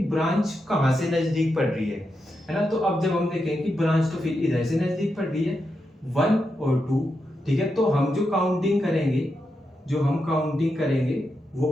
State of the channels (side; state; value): both; normal; correlation 0.86